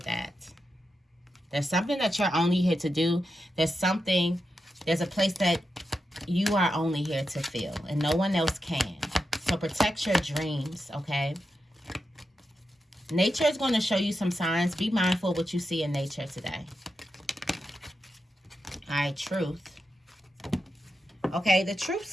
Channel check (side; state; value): both; normal; correlation 0.88